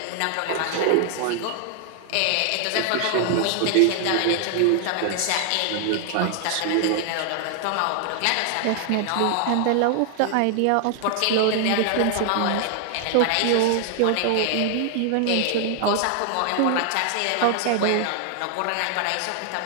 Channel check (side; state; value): both; different; correlation 0.00